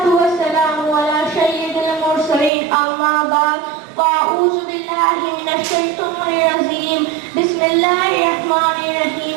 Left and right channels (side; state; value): left; drops out; at 2.5 s